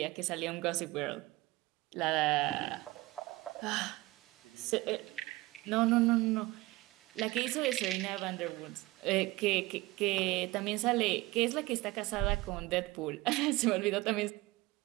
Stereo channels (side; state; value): left; quieter; 20.3 dB